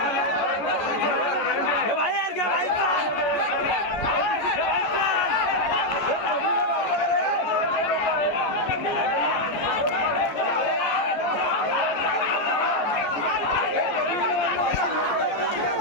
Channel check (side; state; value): right; late; 14 ms